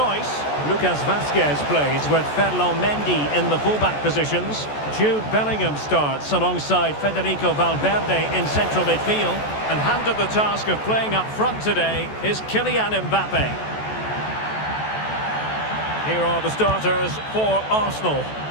Lucas Vazquez plays with Ferland Mendy in the fullback positions. Jude Bellingham starts alongside Federico Valverde in central midfield. And handed the task of playing up front today is Kylian Mbappe. Here are the starters for Arsenal.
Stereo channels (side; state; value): right; late; 14 ms